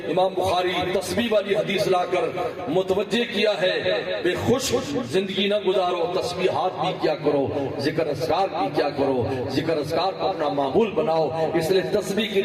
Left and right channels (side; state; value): both; identical; correlation 1.00